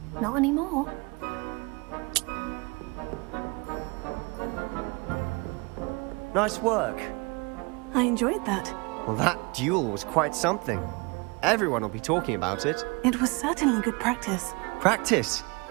Not anymore. Nice work. I enjoyed that. Well, that duel was quite something. Everyone will be talking about it. It was certainly good practice. Practice?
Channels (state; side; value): quieter; left; 28.2 dB